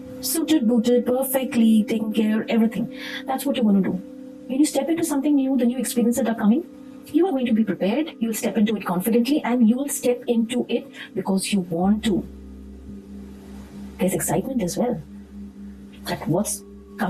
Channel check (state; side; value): identical; both; correlation 1.00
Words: Suited, booted, perfectly taken care, everything. That's what you're going to do. When you step into something new, the new experiences that are coming, you are going to be prepared. You'll step into it confidently and you will step into it because you want to. There's excitement as well. At what's